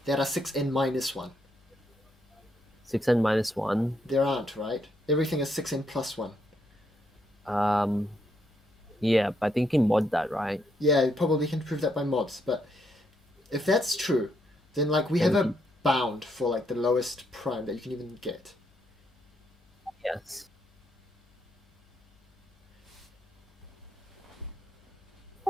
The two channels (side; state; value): both; normal; correlation 0.77